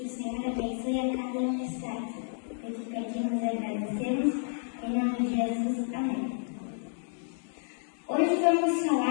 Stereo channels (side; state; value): right; silent; digital silence